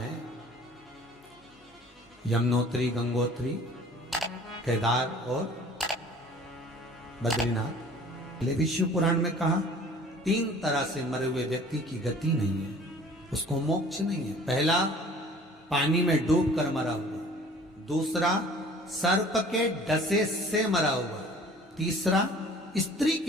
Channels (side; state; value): both; normal; correlation 0.49